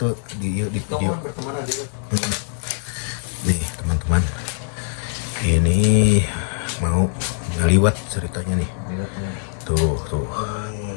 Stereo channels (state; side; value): silent; right; digital silence